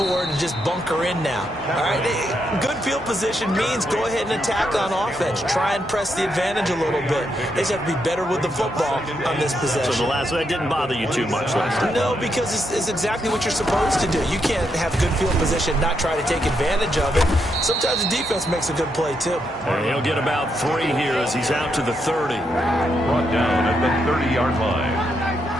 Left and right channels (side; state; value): both; normal; correlation 0.80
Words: to just bunker in now. All right, good field position means go ahead and attack on offense. Try and press the advantage a little bit. They just have to be better with the football on this possession. So the last one, that didn't bother you too much last time? No, because it's exactly what you're supposed to do. You can't have good field position, not try to take advantage of it. Sometimes the defense makes a good play, too. And he'll get about 3 here as he's out to the 30. Brought down at the 30-yard line.